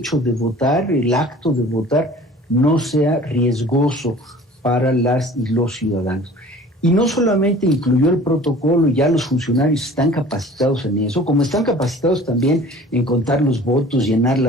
de votar, el acto de votar, no sea riesgoso para las y los ciudadanos. Y no solamente incluyó el protocolo, y ya los funcionarios están capacitados en eso, como están capacitados también en contar los votos, llenar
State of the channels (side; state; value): both; normal; correlation 0.46